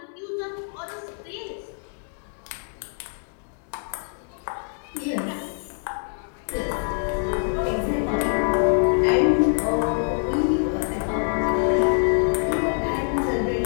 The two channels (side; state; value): right; silent; 62 dB below the other